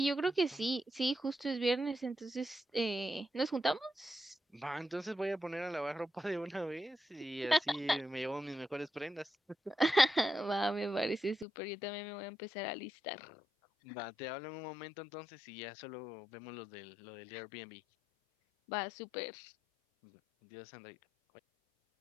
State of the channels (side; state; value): right; drops out; at 11.5 s